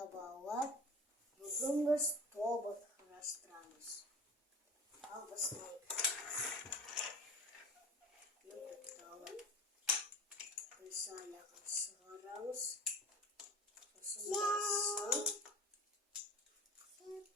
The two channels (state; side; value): normal; both; correlation 0.37